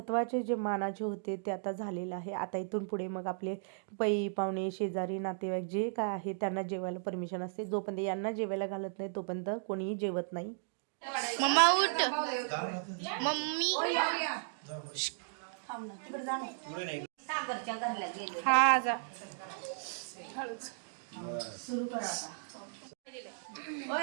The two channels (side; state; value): left; silent; digital silence